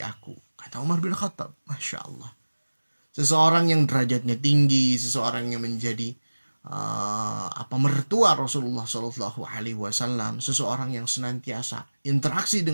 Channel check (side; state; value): both; inverted; correlation -1.00